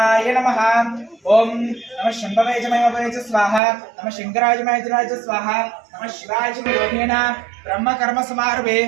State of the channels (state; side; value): drops out; left; at 3.6 s